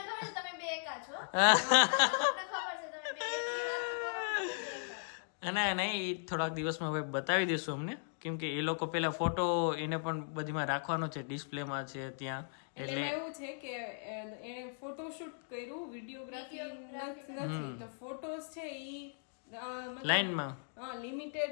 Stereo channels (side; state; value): right; silent; digital silence